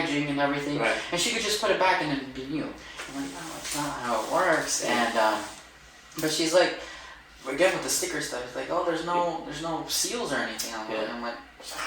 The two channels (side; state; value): both; identical; correlation 1.00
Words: and everything, and she could just put it back and it'd be new. I'm like, no, that's not how it works. And but she's like, again with the sticker stuff, it's like, oh, there's no seals or anything on it. And I'm like.